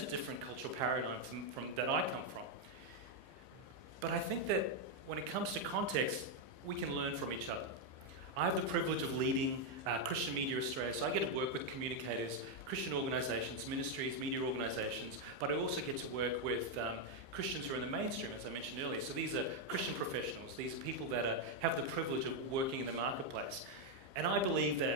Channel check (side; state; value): left; late; 15 ms